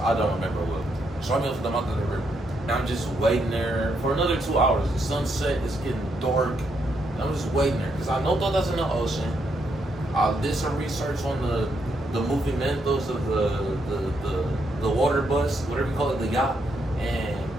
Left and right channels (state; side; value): normal; both; correlation 0.77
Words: don't remember well. So I'm up to the mouth of the river. And I'm just waiting there for another 2 hours. The sunset is getting dark. And I'm just waiting there because I know Tota's in the ocean. I did some research on the movimentos of the water bus, whatever you call it, the yacht, and